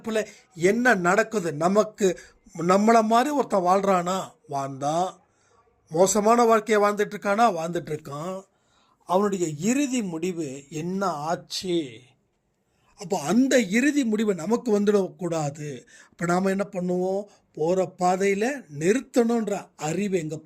என்ன நடக்குது, நம்மளை மாதிரி ஒருத்தன் வாழ்கிறானா வாழ்ந்தான், மோசமான வாழ்க்கையை வாழ்ந்துட்டுருக்கான், அவனுடைய இறுதி முடிவு என்ன ஆச்சு? அப்போ அந்த இறுதி முடிவு நமக்கு வந்துடக்கூடாது. அப்போ நாம் என்ன பண்ணுவோம்? போகிற பாதையில் நிறுத்தணுன்ற அறிவு எங்கே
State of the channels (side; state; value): both; identical; correlation 1.00